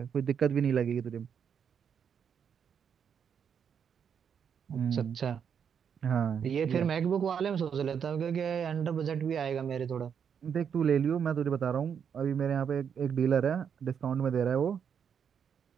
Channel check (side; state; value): left; quieter; 7.5 dB